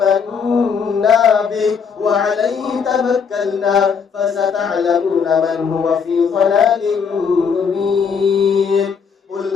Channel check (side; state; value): right; quieter; 6.2 dB